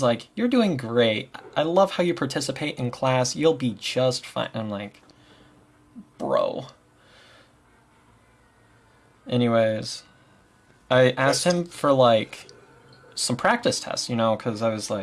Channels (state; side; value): identical; both; correlation 1.00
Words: like, you're doing great. I love how you participate in class. You'll be just fine. I'm like, bro. Anyways, I asked him for like some practice tests, you know, because I was